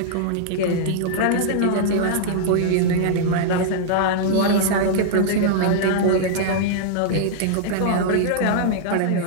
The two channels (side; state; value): both; different; correlation -0.01